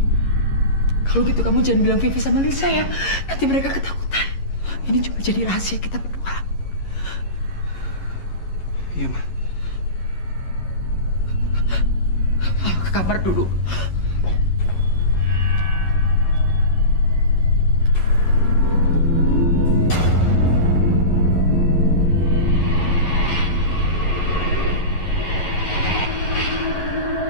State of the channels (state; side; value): late; right; 11 ms